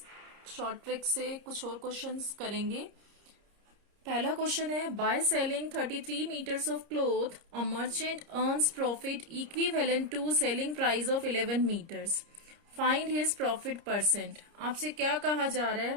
short trick से कुछ और क्वेश्चंस करेंगे। पहला क्वेश्चन है, by selling 33 metres of cloth a merchant earns profit equivalent to selling price of 11 metres, find his profit percent. आपसे क्या कहा जा रहा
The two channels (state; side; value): late; left; 30 ms